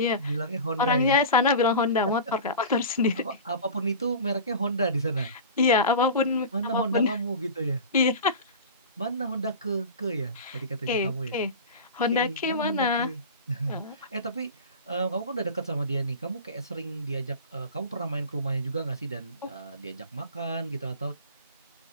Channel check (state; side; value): inverted; both; correlation -0.32